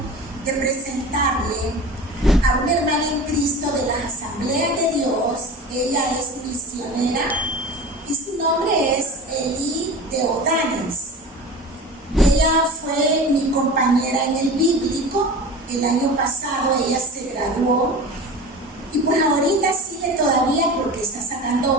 de presentarle a una hermana en Cristo de las Asambleas de Dios. Ella es misionera y su nombre es Eli de Odanes. Ella fue mi compañera en el bíblico. El año pasado ella se graduó y pues ahorita sigue todavía porque está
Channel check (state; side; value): normal; both; correlation 0.34